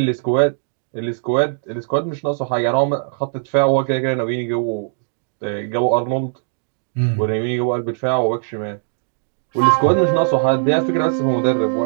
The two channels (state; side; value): silent; left; digital silence